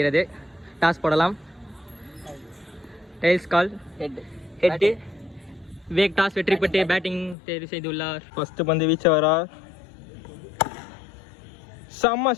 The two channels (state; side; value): drops out; right; at 7.4 s